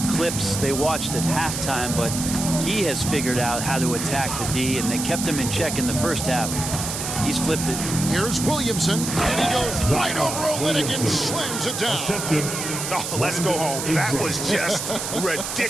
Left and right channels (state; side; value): noise; right; hiss, 4 dB below the sound